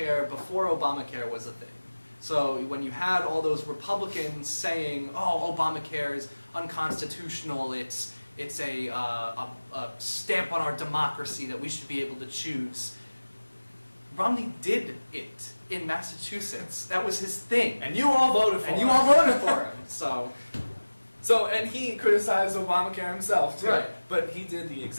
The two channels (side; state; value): both; inverted; correlation -1.00